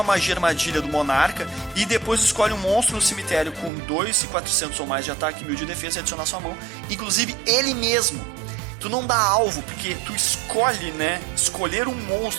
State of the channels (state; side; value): drops out; left; at 3.7 s